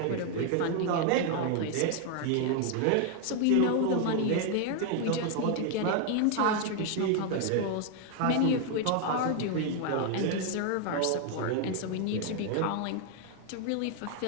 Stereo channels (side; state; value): both; different; correlation 0.00